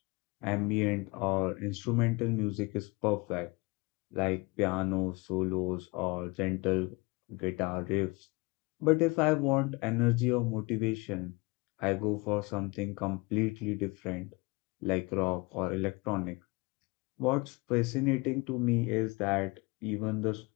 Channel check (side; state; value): right; quieter; 26.2 dB